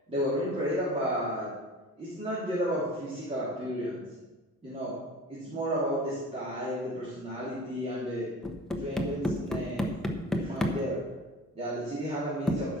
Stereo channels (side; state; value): both; normal; correlation 0.40